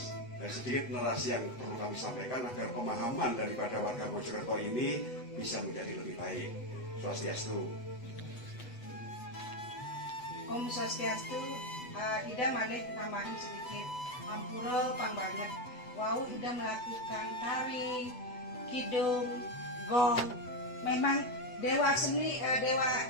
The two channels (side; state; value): right; late; 8.0 ms